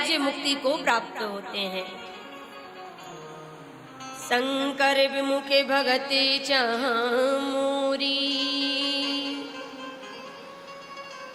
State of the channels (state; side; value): identical; both; correlation 1.00